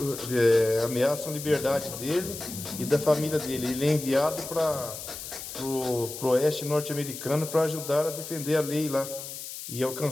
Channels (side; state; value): left; noise; hiss, 10 dB below the sound